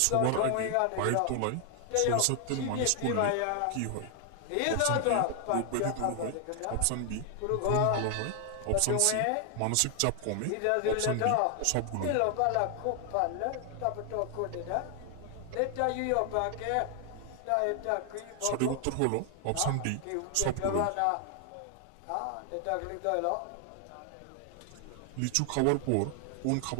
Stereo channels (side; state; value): both; different; correlation 0.00